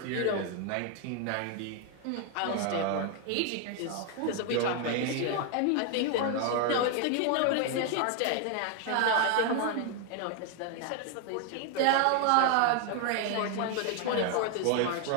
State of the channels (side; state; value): both; different; correlation 0.01